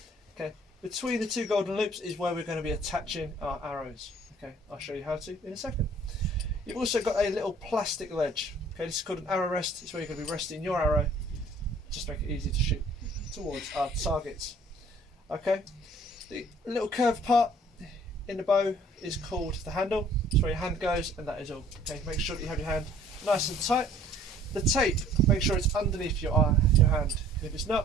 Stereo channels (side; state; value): both; normal; correlation 0.55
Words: Okay, between the two golden loops is where we're going to be attaching our arrows. Okay, I'll show you how to in a second. You've also got a little plastic ledge. Okay, this is called an arrow rest. It's where you're going to be resting your arrow, just make it easy to shoot towards our targets. Okay, the little curved part in the bow is called the handle. It's where your hand goes, and that is all. Okay, make sure that you have your hand nice and tight. The tape, make sure it's underneath your hand. If it's